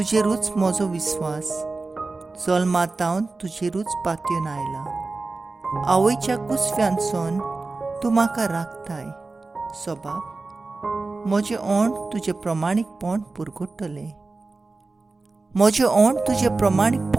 म्हजो विस्वास. जल्मांतावन तुजेरूच पातयेवन आयला. आवयच्या कुसव्यांतसून तूं म्हाका राखताय. सबाब, म्हजें ओंठ तुजें प्रमाणीकपण पुरगुट्टलें. म्हजें ओंठ तुजें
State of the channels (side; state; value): left; quieter; 3.6 dB